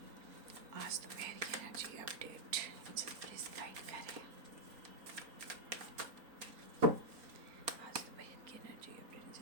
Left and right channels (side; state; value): left; late; 4.4 ms